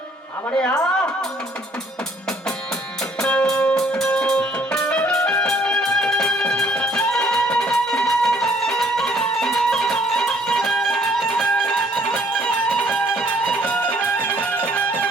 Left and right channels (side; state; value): both; normal; correlation 0.62